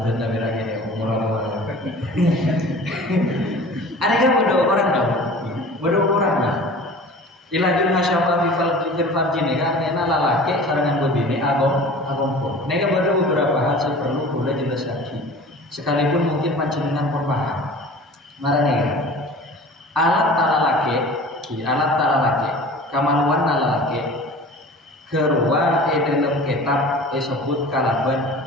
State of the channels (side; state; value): both; normal; correlation 0.41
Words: nabi lagi deh umur ada kan bodoh orang lah. Ilajul hasyafa fil farji ini kan enak lalaki sarangan bebini agom pun. Nega ada beberapa hal yang perlu boleh jelas lagi. Sekalipun mungkin panjenengan pun paham. Marane alat talalaki, kamaluan talalaki keruan dalam kitab disebut kalaban